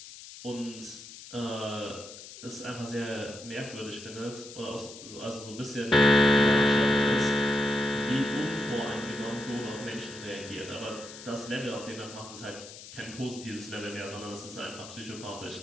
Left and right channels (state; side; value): noise; left; hiss, 15 dB below the sound